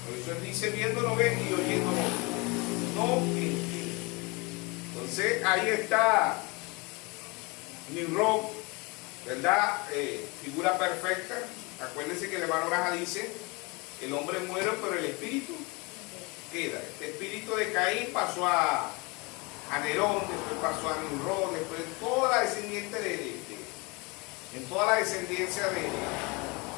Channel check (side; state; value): right; quieter; 27.3 dB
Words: Por eso él dice, viendo no ven y oyendo no entienden. Entonces, ahí está Nimrod, ¿verdad? Figura perfecta. Acuérdense que el hermano Braja dice, el hombre muere, pero el espíritu queda. Este espíritu de Caín pasó a Nerón, después pasó a Nimrod, después toda la descendiente en toda la descendencia